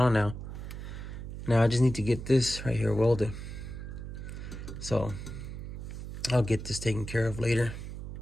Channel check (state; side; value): noise; right; hum, 8 dB below the sound